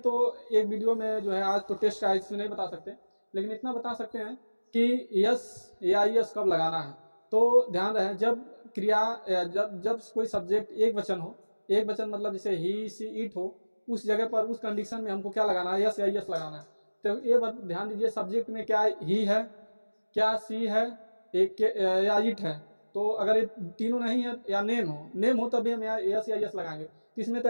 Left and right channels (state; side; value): inverted; both; correlation -1.00